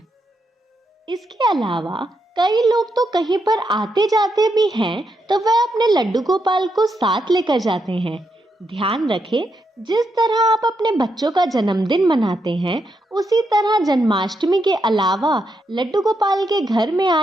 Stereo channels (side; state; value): both; normal; correlation 0.82